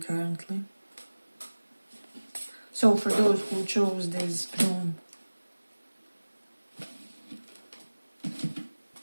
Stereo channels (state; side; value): inverted; both; correlation -1.00